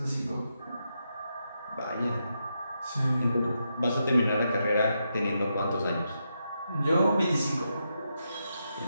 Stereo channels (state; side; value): inverted; both; correlation -0.84